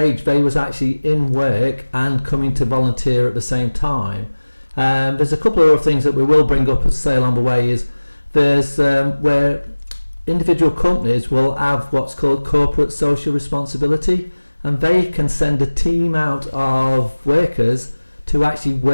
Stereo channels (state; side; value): inverted; both; correlation -1.00